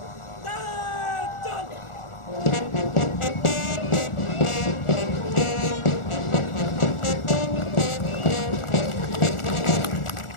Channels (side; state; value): right; late; 1.4 ms